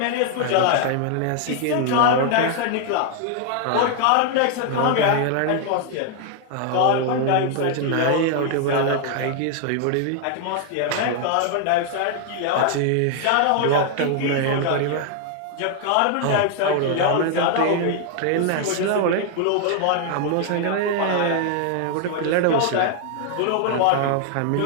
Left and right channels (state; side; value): different; both; correlation 0.00